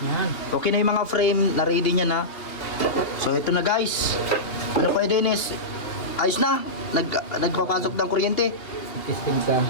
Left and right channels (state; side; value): late; right; 3.0 ms